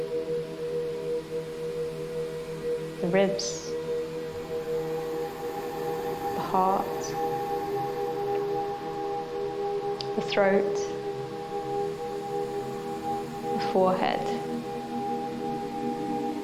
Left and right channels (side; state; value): both; identical; correlation 1.00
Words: the ribs, the heart, the throat, forehead,